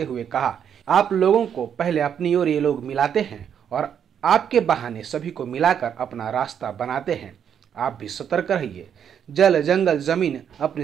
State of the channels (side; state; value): left; quieter; 8.4 dB